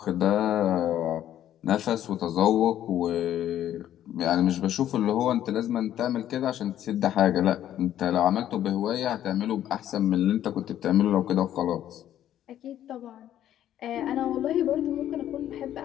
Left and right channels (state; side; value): quieter; right; 11.6 dB